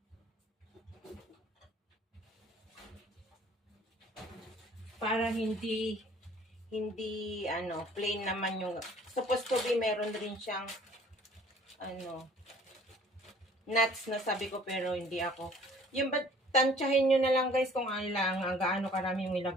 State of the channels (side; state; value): both; normal; correlation 0.53